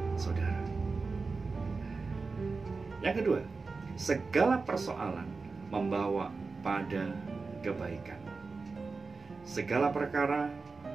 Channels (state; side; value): quieter; left; 4.2 dB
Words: saudara. Yang kedua, segala persoalan membawa pada kebaikan. Segala perkara